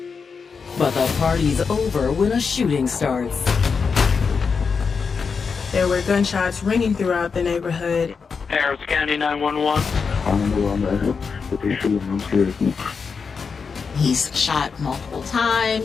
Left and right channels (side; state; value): right; quieter; 5.5 dB